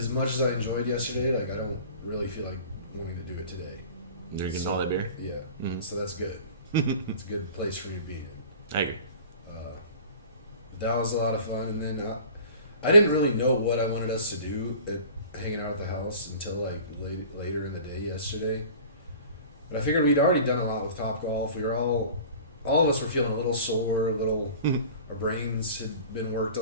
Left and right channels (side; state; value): both; inverted; correlation -0.42